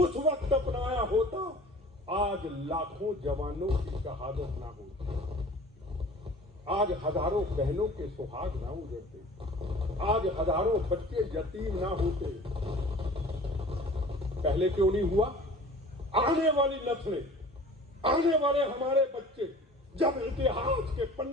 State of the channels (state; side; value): normal; both; correlation 0.44